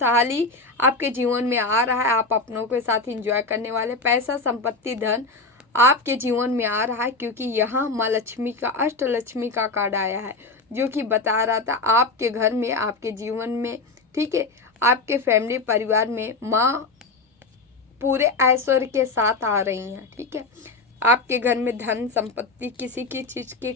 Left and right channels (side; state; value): right; quieter; 3.5 dB